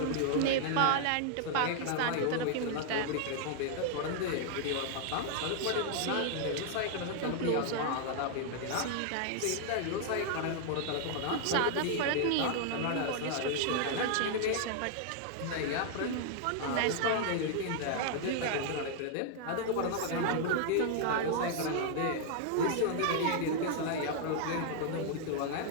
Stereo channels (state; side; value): different; both; correlation 0.00